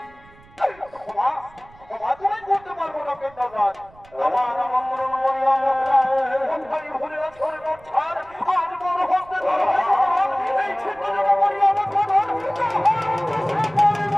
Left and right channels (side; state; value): right; noise; rumble, 26 dB below the sound